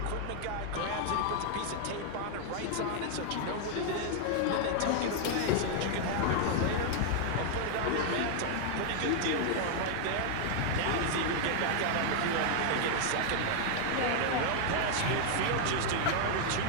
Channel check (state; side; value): different; both; correlation 0.00